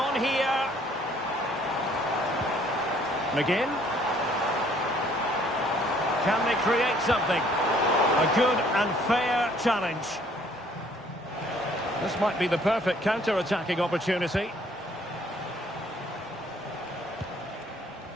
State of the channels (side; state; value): both; normal; correlation 0.61